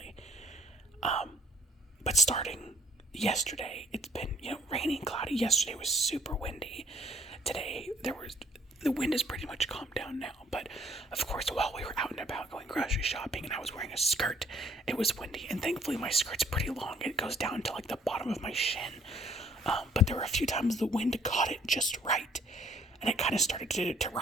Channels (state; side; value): normal; both; correlation 0.61